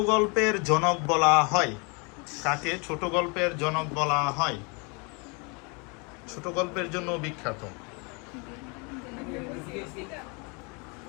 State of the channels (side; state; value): right; quieter; 31.6 dB